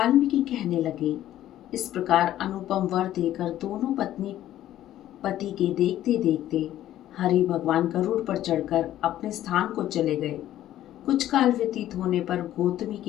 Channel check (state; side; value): quieter; right; 12.9 dB